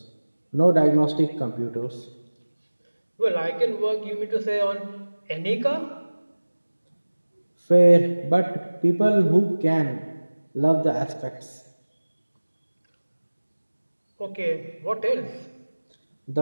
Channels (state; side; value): inverted; both; correlation -1.00